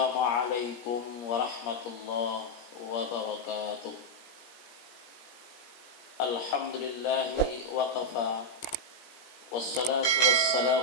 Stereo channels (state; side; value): late; right; 17 ms